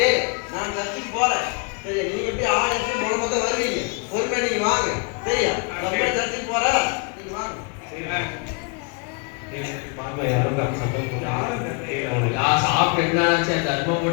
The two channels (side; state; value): right; quieter; 34.1 dB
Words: நான் சர்ச்சுக்கு போறேன். சரி, நீங்க எப்படி ஆள் எடுத்து மூலமா தான் வருவீங்க. பொறுமையா நீங்க வாங்க. சரியா? நம்ம சர்ச்சுக்கு போறேன். நீங்க வாங்க. பாப்பா யாரும் சத்தம் போடுறாங்க. யா சாப்பிட்டு என்னாச்சா தர்மம்